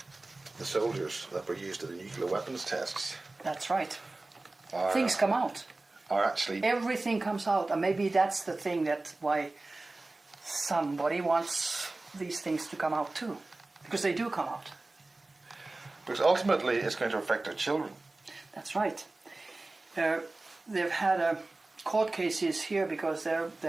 the soldiers that were used at the nuclear weapons tests. That's right. Things come out. are actually... Everything comes out, and maybe that's the thing that why somebody wants these things to come out too, because they do come out. Because ultimately it's going to affect our children. That's right. They've had court cases here because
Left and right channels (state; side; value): quieter; left; 3.1 dB